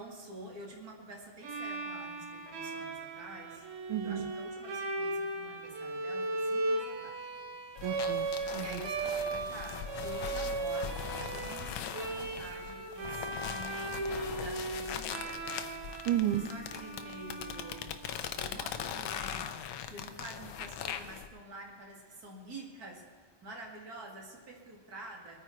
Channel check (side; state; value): left; late; 1.2 ms